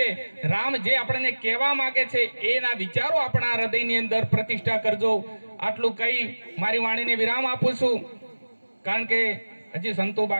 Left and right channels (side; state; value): both; inverted; correlation -1.00